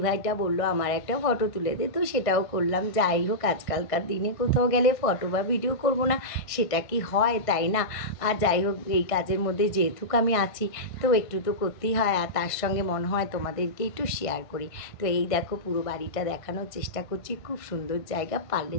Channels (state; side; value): late; right; 1.5 ms